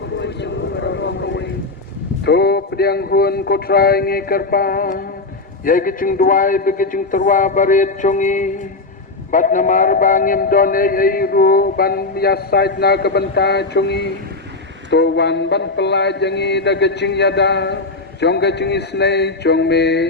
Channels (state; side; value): quieter; right; 3.4 dB